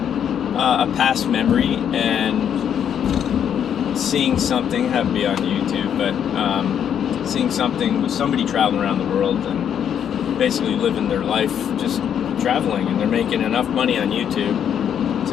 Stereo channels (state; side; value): quieter; right; 8.8 dB